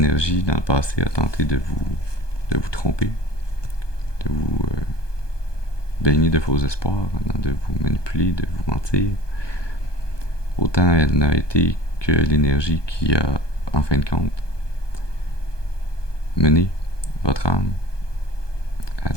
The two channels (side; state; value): right; late; 1.2 ms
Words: dans le passé a tenté de vous tromper, de vous baigner de faux espoirs, de vous manipuler, de vous mentir, autant elle n'a été que l'énergie qui a, en fin de compte, mené votre âme à